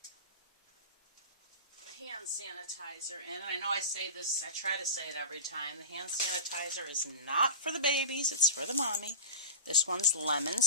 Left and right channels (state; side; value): inverted; both; correlation -0.30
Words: hand sanitizer in. I know I say this, I try to say it every time. The hand sanitizer is not for the babies, it's for the mommy. This one's lemon